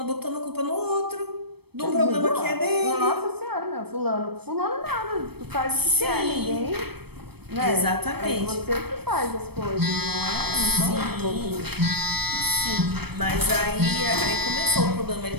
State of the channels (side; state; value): left; late; 0.97 ms